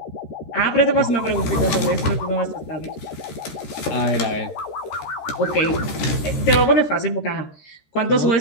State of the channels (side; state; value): right; late; 13 ms